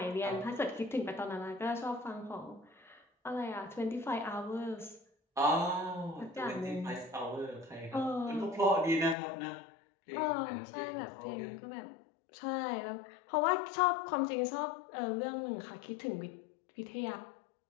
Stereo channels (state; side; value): drops out; right; at 9.2 s